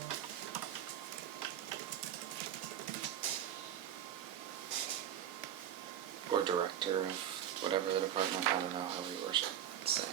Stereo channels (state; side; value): quieter; left; 10.5 dB